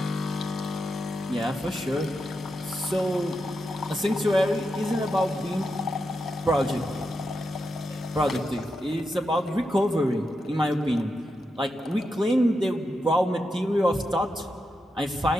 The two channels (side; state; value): both; normal; correlation 0.86